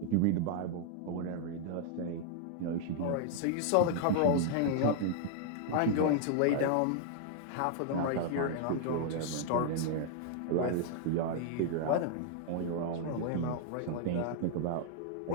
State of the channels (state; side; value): different; both; correlation -0.01